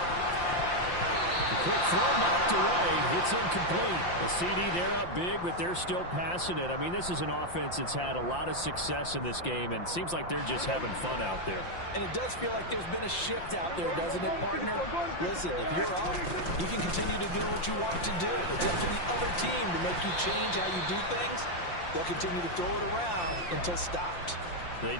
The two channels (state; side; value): late; right; 5.7 ms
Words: Quick throw knocked away. It's incomplete. A CD, they're up big, but they're still passing it. I mean, this is an offense that's had a lot of success in this game, and it seems like they're just having fun out there. And it does feel like there's been a shift out there, doesn't it, partner? Listen, if you're up, you can continue to do what you want to do. It's up to the other team to make you change how you do things. They'll continue to throw it around until stopped. They